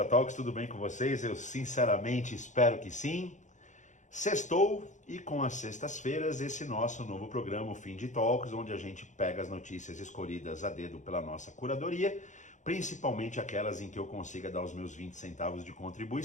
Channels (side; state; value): right; late; 0.35 ms